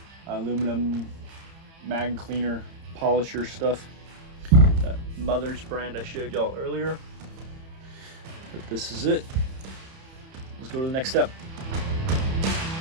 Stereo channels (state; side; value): late; left; 30 ms